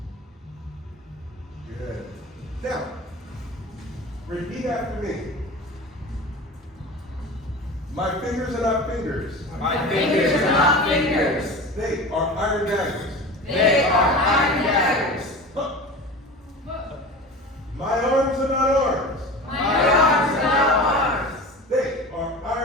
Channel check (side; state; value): both; normal; correlation 0.33